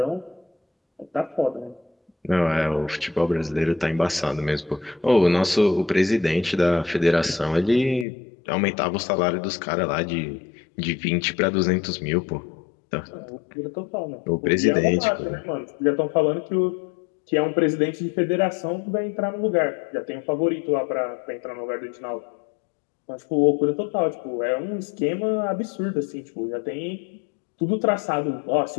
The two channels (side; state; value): right; drops out; at 8.1 s